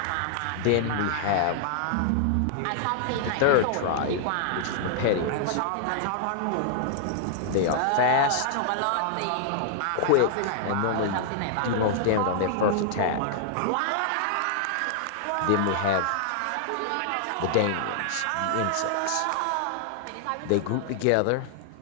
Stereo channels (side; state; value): both; different; correlation -0.01